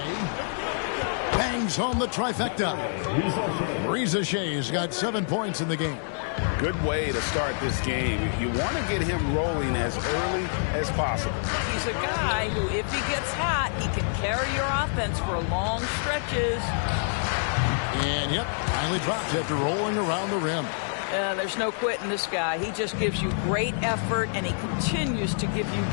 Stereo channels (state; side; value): silent; right; digital silence